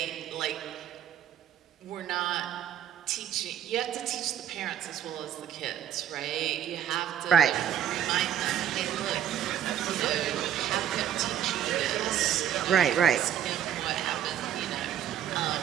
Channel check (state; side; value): quieter; left; 10.2 dB